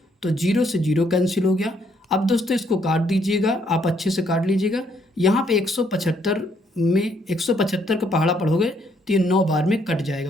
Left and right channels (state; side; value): normal; both; correlation 0.70